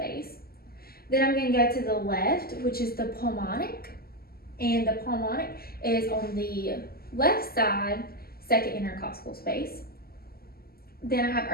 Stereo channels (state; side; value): late; right; 0.45 ms